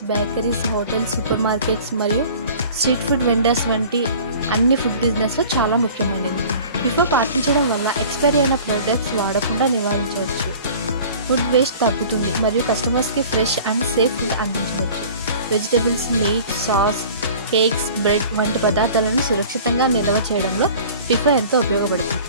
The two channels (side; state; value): both; inverted; correlation -0.44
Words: bakeries, hotels, super markets మరియు స్ట్రీట్ ఫుడ్ వెండర్స్ వంటి అన్ని ఫుడ్ బిజినెస్లో చాలా ముఖ్యమైనది. ఫిఫో పాటించడం వల్ల ఎక్స్పైరీ అయిన ప్రోడక్ట్స్ వాడకుండా నివారించవచ్చు, ఫుడ్ వేస్ట్ తగ్గుతుంది మరియు కస్టమర్స్కి ఫ్రెష్ అండ్ సేఫ్ ఫుడ్ అందించవచ్చు. Vegetables, meat, sauce, cakes, bread వంటి పదార్థాలను సురక్షితంగా నిల్వ చేయడంలో ఫిఫో ఎంతో ఉపయోగపడుతుంది.